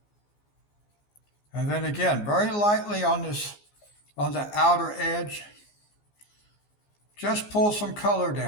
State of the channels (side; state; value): right; late; 14 ms